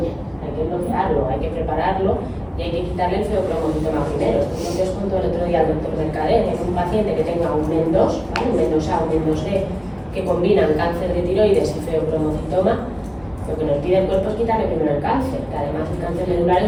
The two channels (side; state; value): both; identical; correlation 1.00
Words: hay que bloquearlo, hay que prepararlo y hay que quitarle el feobromocitoma primero. Entonces os cuento el otro día al doctor Mercader, que es un paciente que tenga un MEN2, ¿vale? Un MEN2A, un MEN2D, que combinan cáncer de tiroides y feobromocitoma. Lo que nos pide el cuerpo es quitarle primero el cáncer, que además el cáncer medular